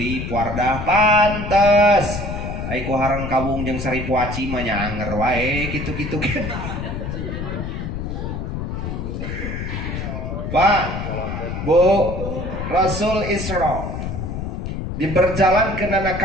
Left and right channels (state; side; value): noise; left; rumble, 5 dB below the sound